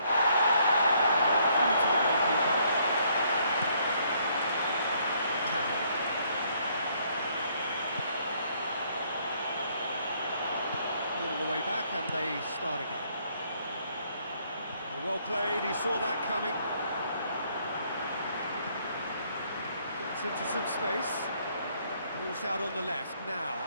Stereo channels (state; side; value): inverted; both; correlation -0.67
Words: Through to the goalkeeper. Cowell. All the way back and they start again. Well played, he saw that coming. Gets into some space. Ball's out on the left now.